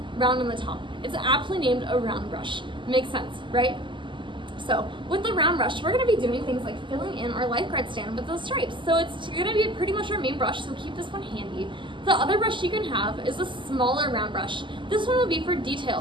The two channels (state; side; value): late; left; 0.24 ms